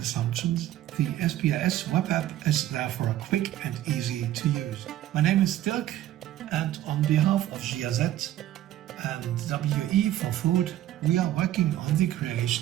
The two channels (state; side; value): quieter; left; 13.3 dB